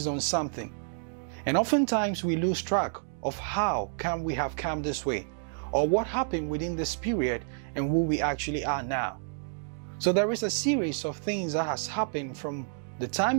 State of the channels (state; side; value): silent; left; digital silence